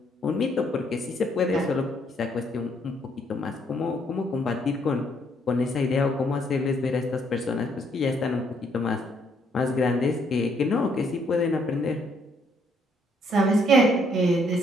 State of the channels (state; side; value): normal; both; correlation 0.69